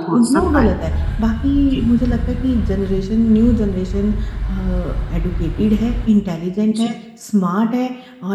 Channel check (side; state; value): both; identical; correlation 1.00